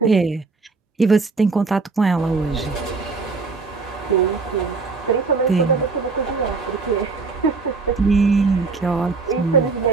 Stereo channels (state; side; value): quieter; left; 4.3 dB